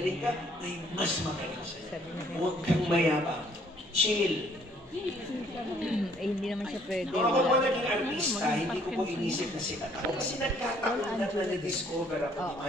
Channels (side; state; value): both; normal; correlation 0.62